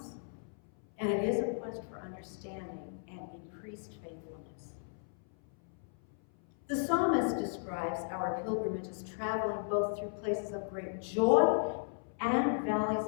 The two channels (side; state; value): right; silent; 54 dB below the other